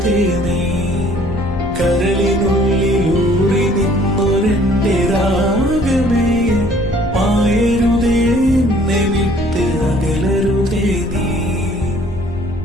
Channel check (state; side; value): noise; left; rumble, 10 dB below the sound